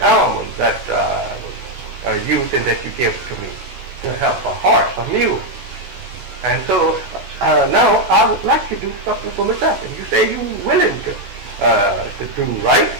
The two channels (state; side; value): late; left; 16 ms